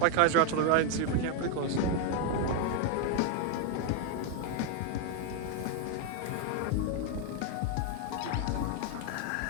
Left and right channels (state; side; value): different; both; correlation 0.01